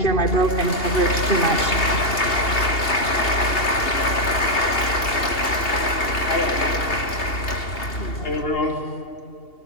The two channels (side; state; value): right; late; 2.8 ms